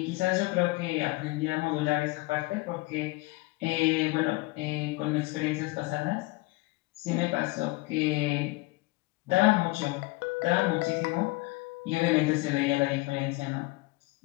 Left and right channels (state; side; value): quieter; right; 22.7 dB